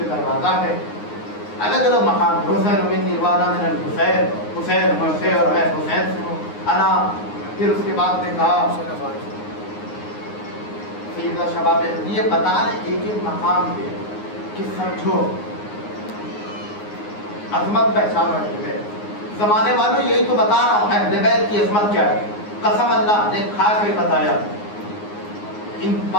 دروازہ ہے. الگ الگ مقام. حسین منی وانا من الحسین. حسین مجھ سے اور میں حسین سے ہوں. انا. پھر اس کے بعد نے کہا سیدہ شباب یہ بتا رہے ایک ایک مقام پہ کہ سمجھو عظمت پہچانو اہل بیت. زمانے والوں یہی تو بتا رہا ہوں اہل بیت کی عظمت کیا ہے. قسم اللہ نے کھا کے بتایا ان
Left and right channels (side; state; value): right; late; 9.6 ms